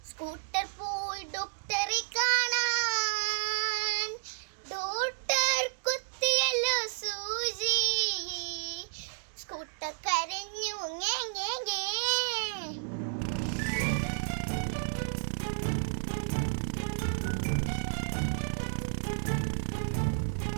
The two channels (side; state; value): left; silent; digital silence